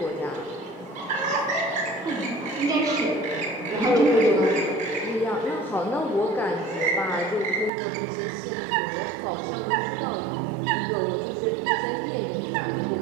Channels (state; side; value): drops out; left; at 7.7 s